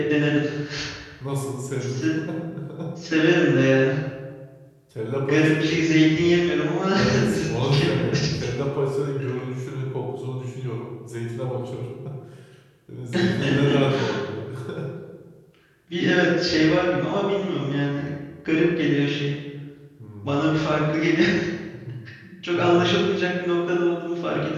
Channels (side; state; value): both; identical; correlation 1.00